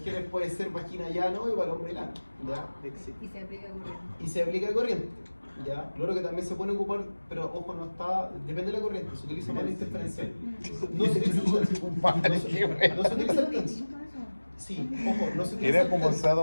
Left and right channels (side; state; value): both; inverted; correlation -1.00